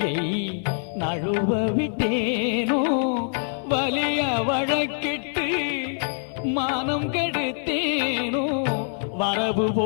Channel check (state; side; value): silent; right; 62 dB below the other